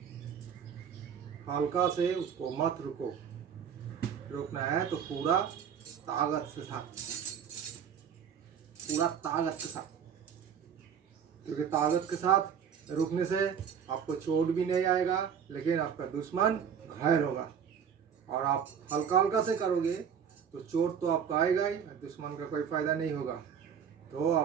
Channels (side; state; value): left; quieter; 7.7 dB